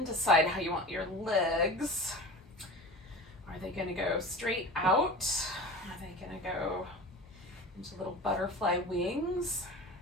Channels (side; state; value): both; normal; correlation 0.34